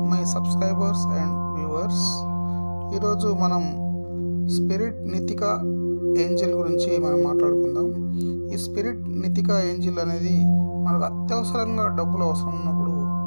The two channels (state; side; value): inverted; both; correlation -1.00